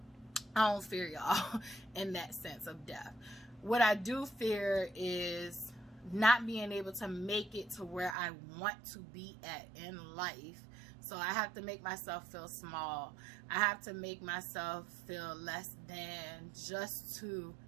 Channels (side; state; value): left; drops out; at 8.2 s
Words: I don't fear y'all in that sense of death. What I do fear is not being able to make it to where I want to be at in life. So I have to make myself feel small. I have to make myself feel less than just to